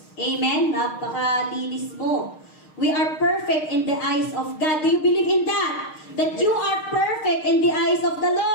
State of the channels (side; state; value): right; late; 6.5 ms